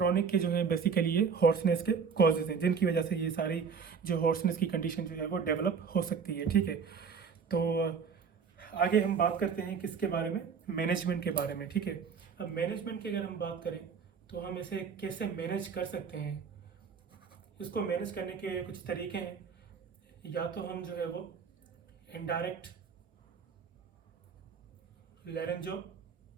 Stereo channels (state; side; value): quieter; left; 6.1 dB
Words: के जो है बेसिकली ये हॉर्सनेस के कॉजेज हैं, जिनकी वजह से ये सारी जो हॉर्सनेस की कंडीशन जो है वो डेवलप हो सकती है, ठीक है। तो आगे हम बात करते हैं किसके बारे में? मैनेजमेंट के बारे में, ठीक है। अब मैनेजमेंट की अगर हम बात करें तो हम इसे कैसे मैनेज कर सकते हैं? इसको मैनेज करने के कुछ तरीके हैं। या तो हम जो है वो इनडायरेक्ट